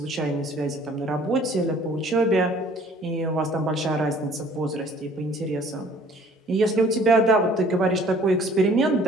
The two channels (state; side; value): normal; both; correlation 0.55